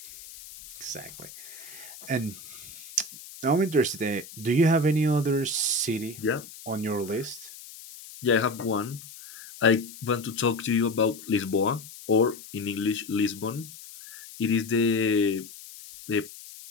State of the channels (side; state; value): left; noise; hiss, 16 dB below the sound